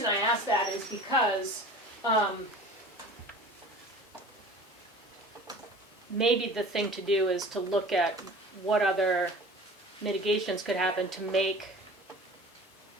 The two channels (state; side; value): normal; both; correlation 0.42